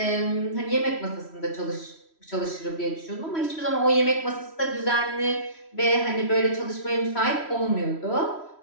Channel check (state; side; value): late; right; 3.1 ms